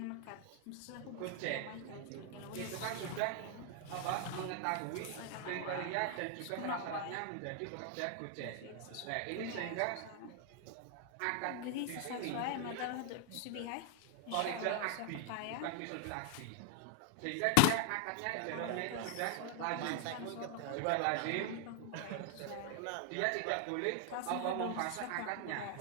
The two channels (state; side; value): different; both; correlation 0.00